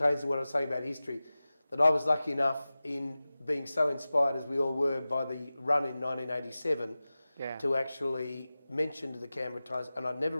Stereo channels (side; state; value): both; inverted; correlation -0.96